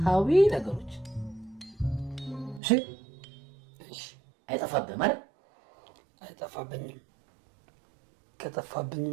ነገሮች እሺ አይጠፋብህም አይደል አይጠፋብኝም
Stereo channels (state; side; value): drops out; left; at 2.6 s